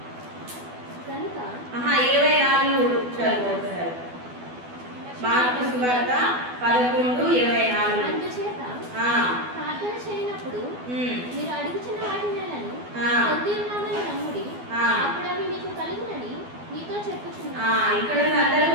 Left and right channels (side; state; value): left; late; 12 ms